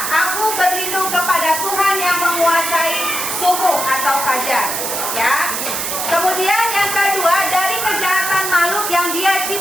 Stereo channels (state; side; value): noise; right; hiss, 2 dB below the sound